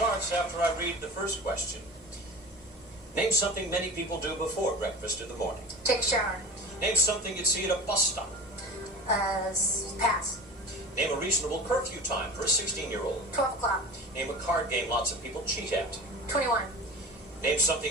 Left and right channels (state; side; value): normal; both; correlation 0.35